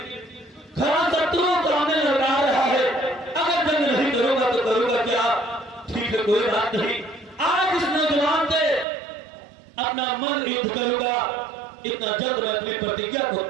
खरा शत्रुओं को सामने लगा रहा है। अगर जंग नहीं करूंगा तो करूंगा क्या? ठीक है, कोई बात नहीं। आज इस नौजवान से अपना मन युद्ध करूंगा, इतना जल्द मैं अपनी प्रतिज्ञा को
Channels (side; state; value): left; drops out; at 8.8 s